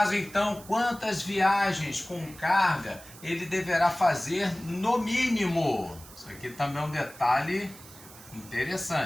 então, quantas viagens com carga ele deverá fazer no mínimo? Isso aqui também é um detalhe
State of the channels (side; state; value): right; noise; hiss, 19 dB below the sound